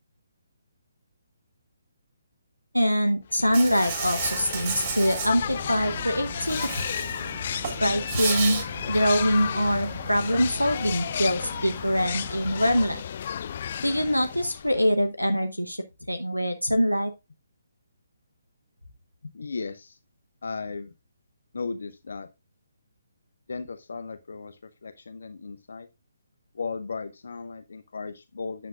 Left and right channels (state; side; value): inverted; both; correlation -0.91